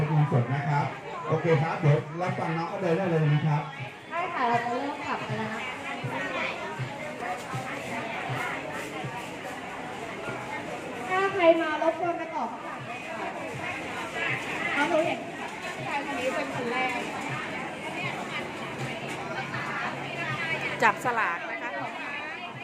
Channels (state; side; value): identical; both; correlation 1.00